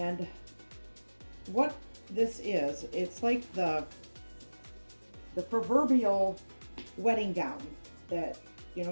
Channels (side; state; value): both; inverted; correlation -1.00